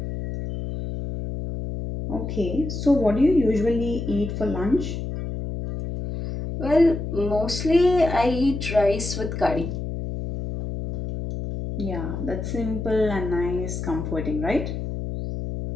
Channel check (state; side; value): noise; left; hum, 5 dB below the sound